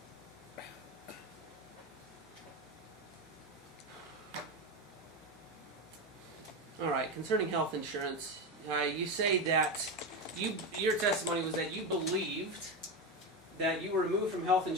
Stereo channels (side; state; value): both; normal; correlation 0.16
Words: All right, concerning health insurance, you say that your testimony was that you believed that you were removed from health